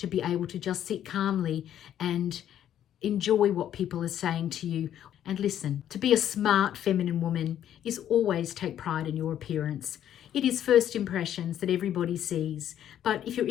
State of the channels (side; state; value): right; quieter; 10.7 dB